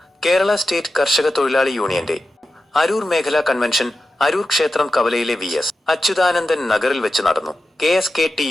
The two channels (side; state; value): both; normal; correlation 0.92